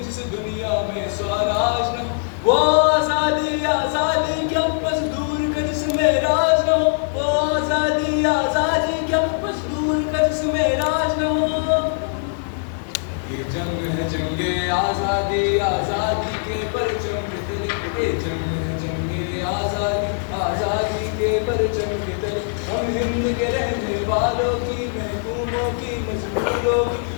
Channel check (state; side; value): silent; right; digital silence